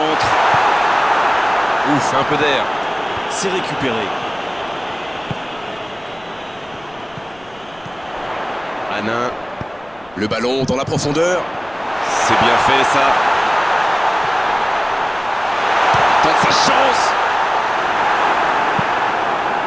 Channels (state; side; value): noise; left; rumble, 27 dB below the sound